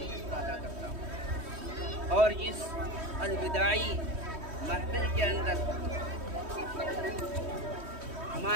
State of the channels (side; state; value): left; late; 3.1 ms